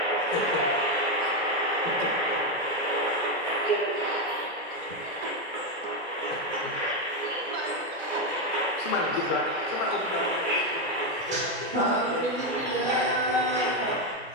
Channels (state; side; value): normal; both; correlation 0.07